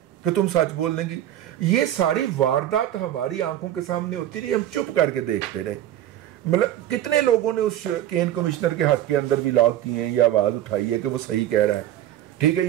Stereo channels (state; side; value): quieter; left; 12.3 dB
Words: कि तुम सच बोलने की। ये सारी वारदात हमारी आंखों के सामने होती रही, हम चुप करके देखते रहे। मतलब कितने लोगों ने उस केन कमिश्नर के हक के अंदर भी लॉग किए हैं या आवाज उठाई है कि वो सही कह रहा है, ठीक है,